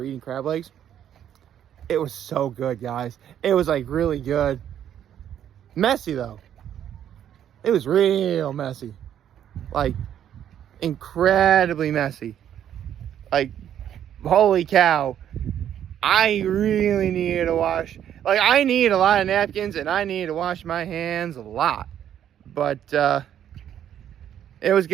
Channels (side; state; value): left; quieter; 10.1 dB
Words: eating crab legs. It was so good, guys. It was really good. Messy though. It was real messy. Incredibly messy. Holy cow. I really needed to wash. I need a lot of napkins and I needed to wash my hands a lot. But it was